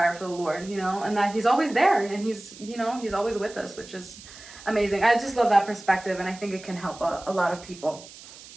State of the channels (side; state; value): right; noise; hiss, 18 dB below the sound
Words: for the Lord, you know, and that He's always there and He's, you know, He's always with us, which is amazing. I just love that perspective, and I think it can help a lot of people.